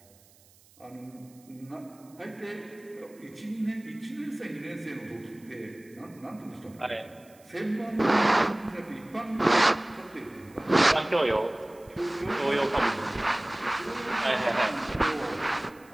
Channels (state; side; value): noise; right; hiss, 28 dB below the sound